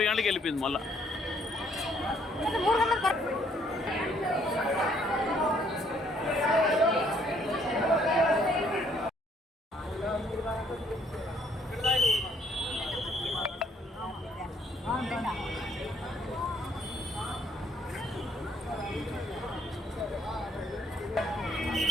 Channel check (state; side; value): normal; both; correlation 0.66